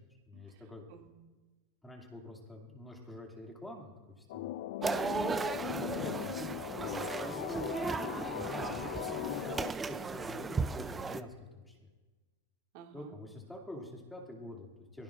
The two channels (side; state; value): both; normal; correlation 0.52